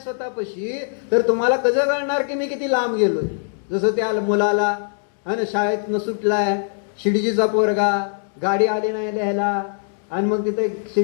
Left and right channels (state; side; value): silent; right; digital silence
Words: स्वतःपाशी तर तुम्हाला कसं कळणार की मी किती लांब गेलोय. जसं त्या मुलाला आणि शाळेत न सुटलाय, शिडजीचा पोरगा, गाडी आली नाही लिहायला, आणि मग तिथे